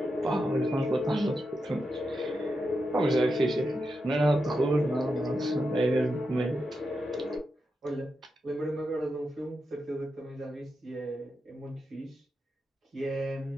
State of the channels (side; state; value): both; normal; correlation 0.87